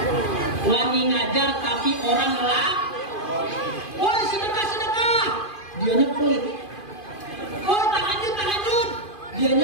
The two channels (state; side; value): late; right; 2.5 ms